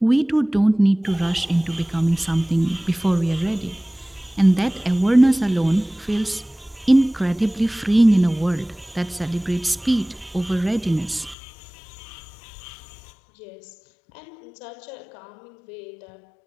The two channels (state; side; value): drops out; right; at 11.4 s